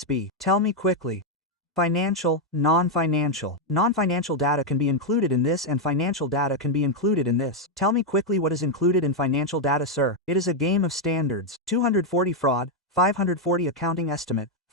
be? Tell me quickly. Financial, non-financial. Non-financial data can be included in this and financial data can be included in this. Tell me quickly what is included in financial data, sir. It is a game of standards. 240 fraud, 540 accounting estimate,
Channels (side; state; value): both; normal; correlation 0.01